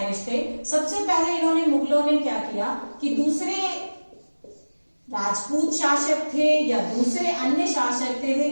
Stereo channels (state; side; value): inverted; both; correlation -1.00